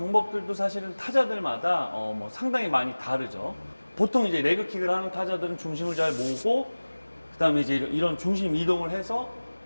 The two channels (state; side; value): inverted; both; correlation -1.00